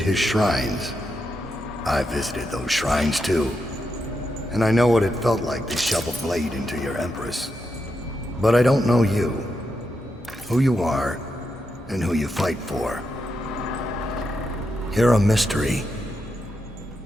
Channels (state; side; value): normal; both; correlation 0.85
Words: shrines. I visited those shrines too. And I know what it felt like to shove a blade into your Empress. But I don't know you. Who you are, and who you fight for. You're a mystery,